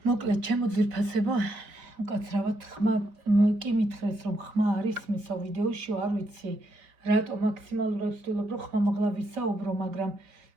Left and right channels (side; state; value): left; late; 4.4 ms